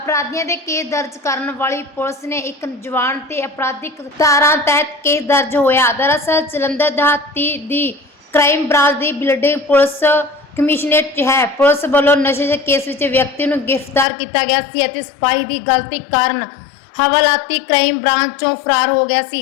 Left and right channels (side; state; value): right; drops out; at 14.1 s